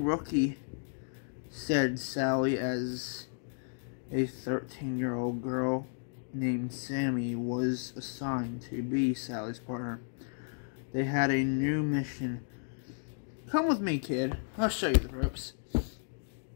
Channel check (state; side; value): silent; right; digital silence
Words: said Sally as a 13-year-old girl named Sammy was assigned to be Sally's partner. They had a new mission. Come with me, kid. I'll show you the ropes.